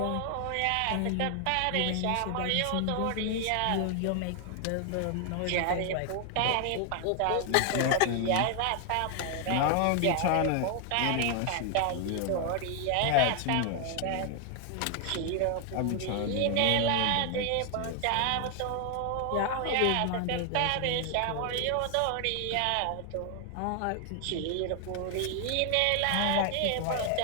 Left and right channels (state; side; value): different; both; correlation 0.00